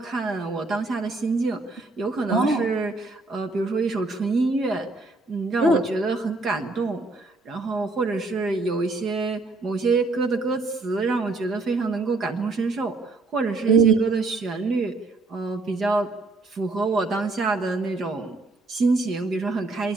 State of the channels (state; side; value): quieter; left; 3.3 dB